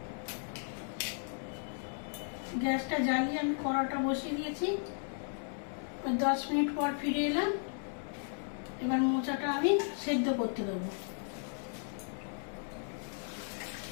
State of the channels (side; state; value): right; silent; 54 dB below the other